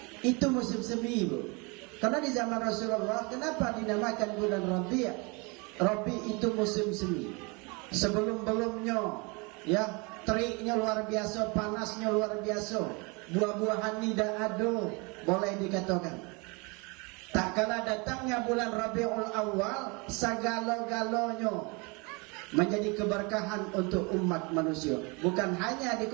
Itu musim semi Bu. Karena di zaman Rasulullah, kenapa dinamakan bulan Rabi'? Rabi' itu musim semi. Sebelum-belumnya ya, teriknya luar biasa, panasnya luar biasa. Buah-buahan tidak ada, boleh dikatakan. Tak kala datangnya bulan Rabiul Awal, segala-galanya menjadi keberkahan untuk umat manusia. Bukan hanya di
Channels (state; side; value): quieter; left; 29.3 dB